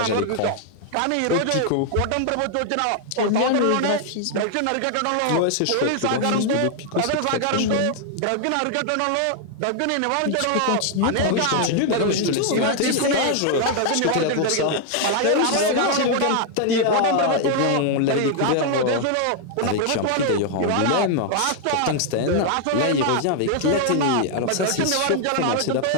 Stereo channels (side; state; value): both; different; correlation 0.00